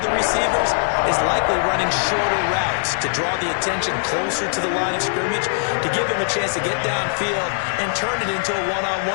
receivers is likely running shorter routes to draw the attention closer to the line of scrimmage, to give him a chance to get downfield and turn it into a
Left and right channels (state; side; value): silent; right; digital silence